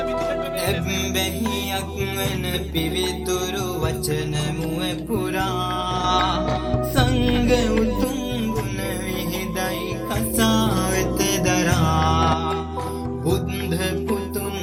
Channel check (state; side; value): identical; both; correlation 1.00